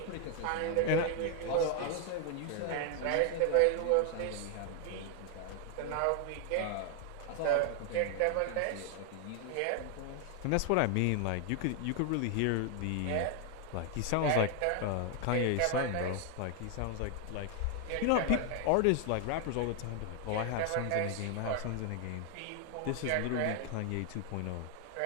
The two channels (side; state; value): both; different; correlation 0.00